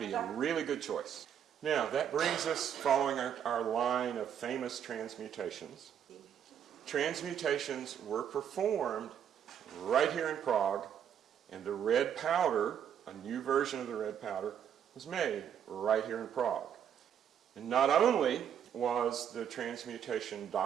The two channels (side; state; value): left; quieter; 8.9 dB